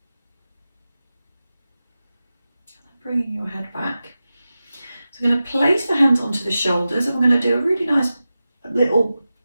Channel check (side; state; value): both; inverted; correlation -0.94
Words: Bringing your head back. So I'm going to place the hands onto the shoulders and we're going to do a really nice little